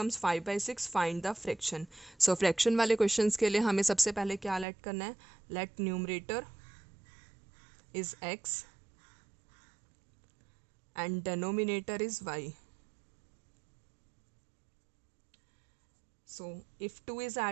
5 by 6. Find the fraction. So fraction वाले questions के लिए हमें सबसे पहले क्या let करना है? Let numerator is x and denominator is y. So if 2 is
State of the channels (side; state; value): left; drops out; at 4.7 s